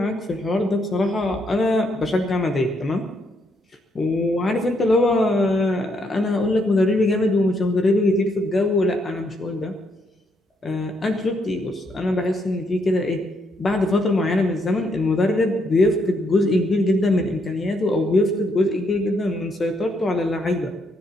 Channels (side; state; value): both; normal; correlation 0.75